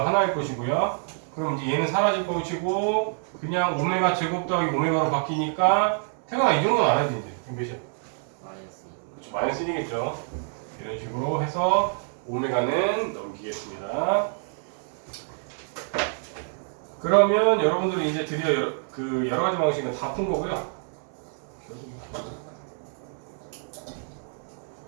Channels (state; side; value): silent; left; 56 dB below the other